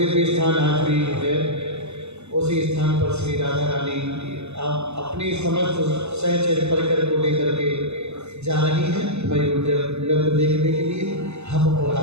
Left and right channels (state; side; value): late; left; 0.81 ms